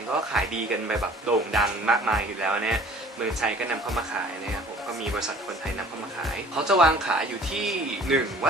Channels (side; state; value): both; normal; correlation 0.50